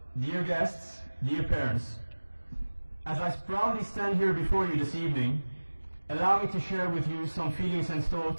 dear guests, dear parents, as I proudly stand here before you this evening, allow me to share with you some feelings and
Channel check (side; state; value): both; inverted; correlation -1.00